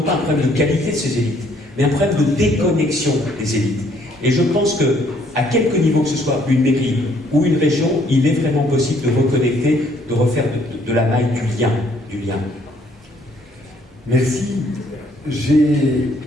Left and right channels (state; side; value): normal; both; correlation 0.65